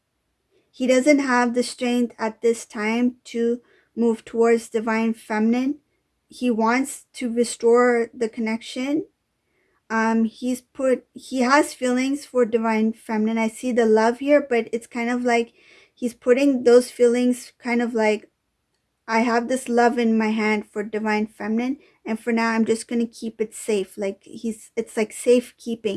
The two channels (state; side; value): identical; both; correlation 1.00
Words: He doesn't have the strength at this time to move towards divine feminine. He wants to restore the connection. He has feelings for divine feminine. I see the love here, but it's kind of like he's putting those feelings kind of like, I have this love in my hand for divine feminine, and for now I'm just going to keep it safe. Like it's like